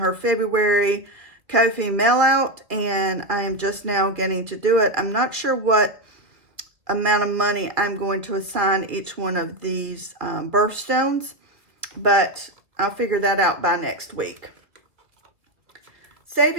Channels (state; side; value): late; left; 1.7 ms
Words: February Ko-fi mail out, and I am just now getting to do it. I'm not sure what amount of money I'm going to assign each one of these birthstones, but I'll figure that out by next week.